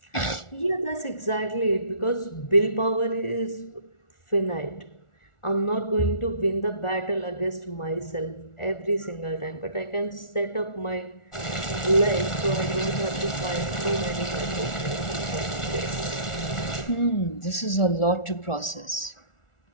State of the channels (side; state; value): right; late; 1.4 ms